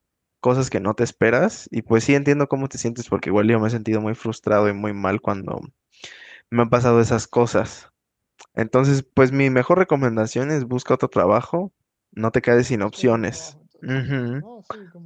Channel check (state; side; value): identical; both; correlation 1.00